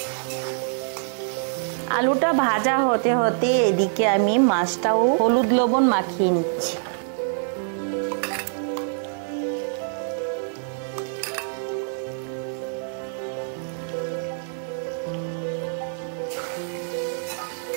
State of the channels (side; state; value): left; silent; digital silence